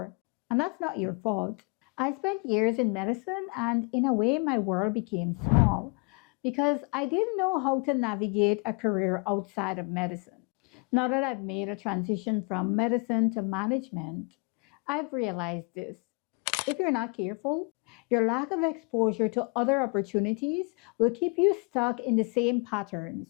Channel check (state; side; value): quieter; right; 33.0 dB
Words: And that's not your fault. I spent years in medicine, and in a way, my world became small because I didn't know how to navigate a career outside of medicine. Now that I've made a transition from medicine to management, I've realized this. If you're not careful, your lack of exposure to other opportunities will keep you stuck in the same